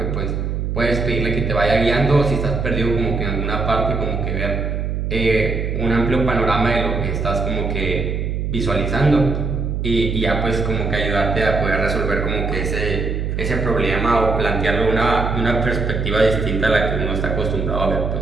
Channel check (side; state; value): right; noise; hum, 1 dB below the sound